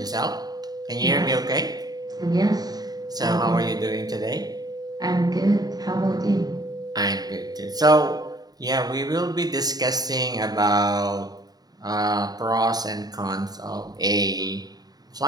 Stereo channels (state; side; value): late; left; 0.19 ms